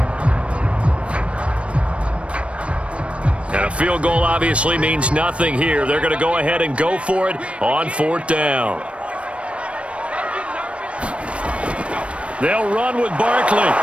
And a field goal obviously means nothing here. They're going to go ahead and go for it on 4th down. They'll run with Barkley.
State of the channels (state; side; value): late; left; 0.061 ms